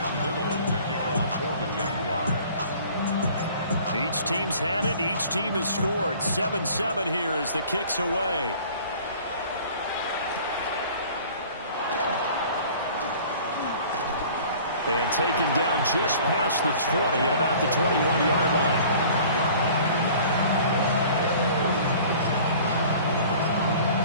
Each team's had it. Each team has scored. 7-7 here as the kick's away. And taken down just past the 20 at about the 21-yard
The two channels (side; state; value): both; inverted; correlation -0.48